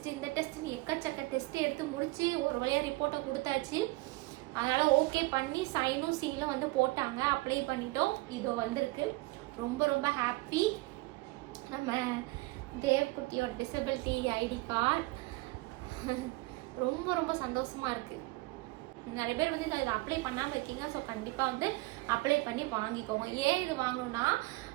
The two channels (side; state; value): left; quieter; 22.1 dB